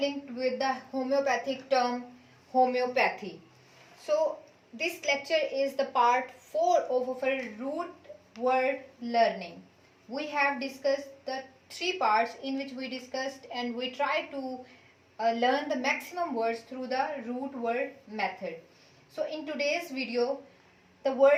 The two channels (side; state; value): both; identical; correlation 1.00